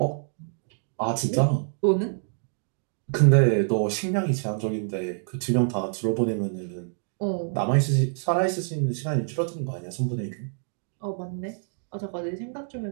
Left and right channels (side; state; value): left; silent; 58 dB below the other